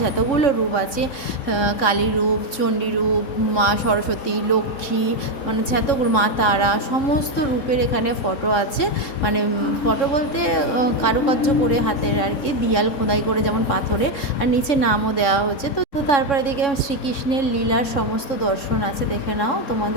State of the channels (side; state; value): right; late; 3.6 ms